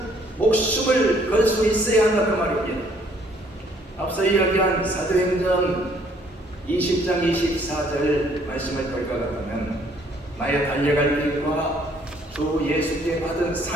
목숨을 걸 수 있어야 한다 그 말입니다. 앞서 이야기한 사도행전 20장 24절 말씀을 볼 것 같으면 나의 달려갈 길과 주 예수께 받은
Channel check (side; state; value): both; normal; correlation 0.63